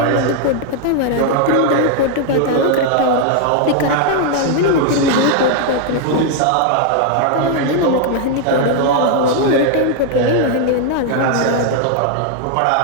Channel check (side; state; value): both; different; correlation 0.00